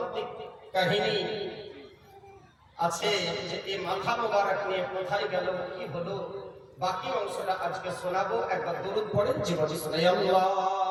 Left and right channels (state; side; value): identical; both; correlation 1.00